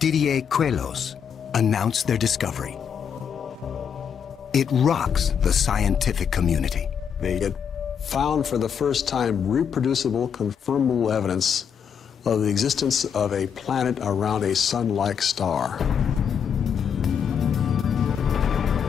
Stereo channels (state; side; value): quieter; right; 7.5 dB